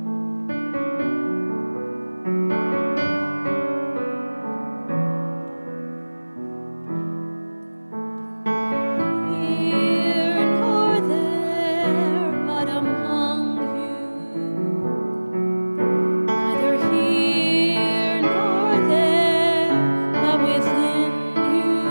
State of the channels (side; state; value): both; inverted; correlation -1.00